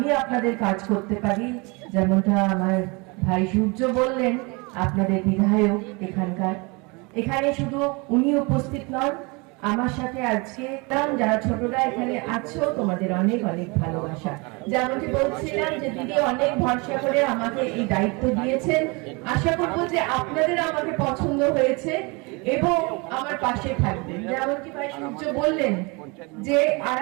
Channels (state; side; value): quieter; left; 28.4 dB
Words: আপনাদের কাজ করতে পারি। যেমনটা আমার ভাই সূর্য বললেন, আপনাদের বিধায়ক এখানে শুধু উনি উপস্থিত নন, আমার সাথে আজকে যারা ছোটরা এখানে আছো তোমাদের অনেক অনেক ভালোবাসা। যেমনটি বলছিলাম যে দিদি অনেক ভরসা করে আমাকে এই দায়িত্ব দিয়েছেন। আশা করবো যে আপনাদের আমাকে পছন্দ হয়েছে এবং আমার পাশে থাকবেন। যেমনটি ভাই সূর্য বললেন যে